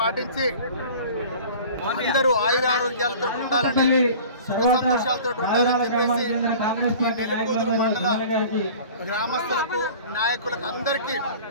అందరూ ఆయురారోగ్యాలతో ఉండాలని, సుఖ సంతోషాలతో ఉండాలని చెప్పేసి నెల్లికూదురు మండల గ్రామస్తులకు, నాయకులకు అందరికీ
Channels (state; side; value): inverted; both; correlation -0.43